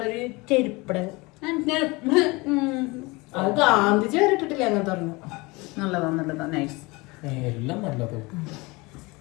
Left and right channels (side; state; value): right; quieter; 24.5 dB